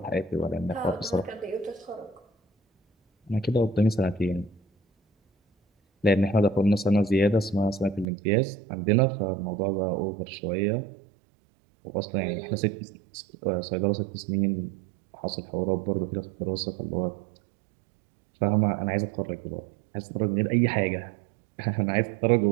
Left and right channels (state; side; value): drops out; left; at 8.1 s